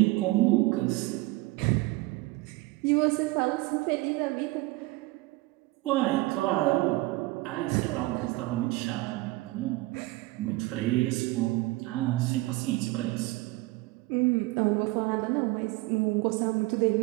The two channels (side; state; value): left; quieter; 20.9 dB